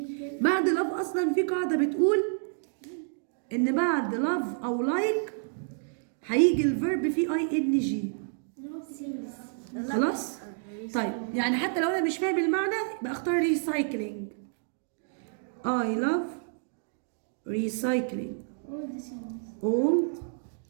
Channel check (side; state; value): left; silent; digital silence